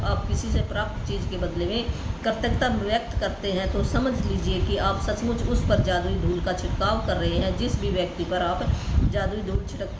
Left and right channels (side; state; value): both; identical; correlation 1.00